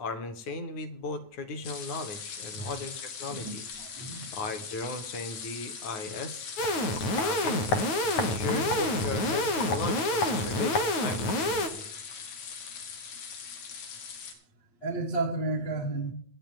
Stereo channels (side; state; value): right; late; 9.2 ms